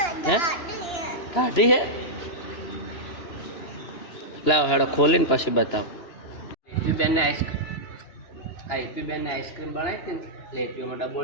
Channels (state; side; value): late; right; 2.9 ms